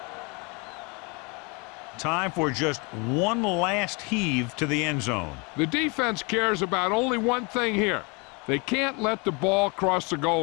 Time for just one last heave to the end zone. The defense cares about only one thing here. They can't let the ball cross the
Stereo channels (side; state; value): right; quieter; 30.3 dB